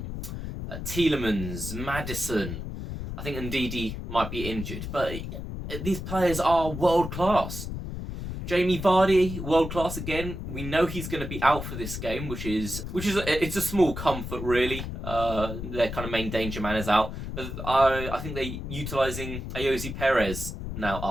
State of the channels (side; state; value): left; noise; rumble, 7 dB below the sound